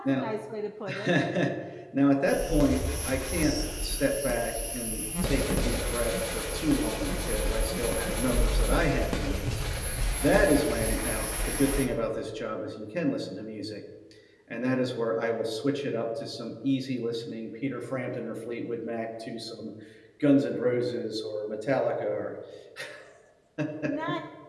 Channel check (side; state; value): both; identical; correlation 1.00